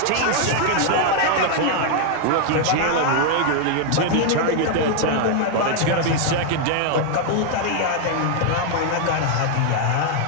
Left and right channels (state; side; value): different; both; correlation 0.00